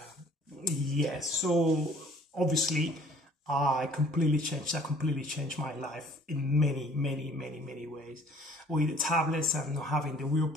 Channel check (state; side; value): normal; both; correlation 0.54